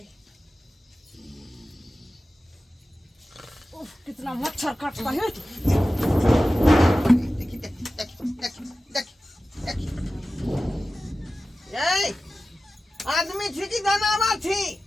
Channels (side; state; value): both; normal; correlation 0.95